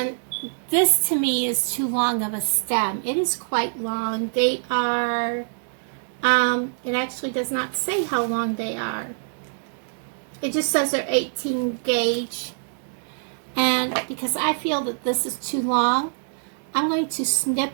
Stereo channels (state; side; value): silent; left; digital silence